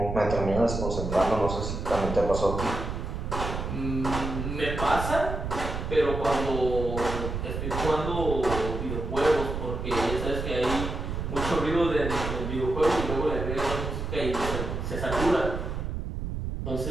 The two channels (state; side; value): noise; right; rumble, 4 dB below the sound